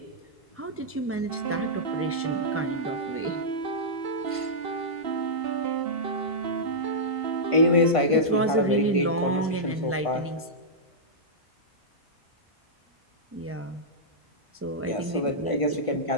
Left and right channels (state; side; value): normal; both; correlation -0.11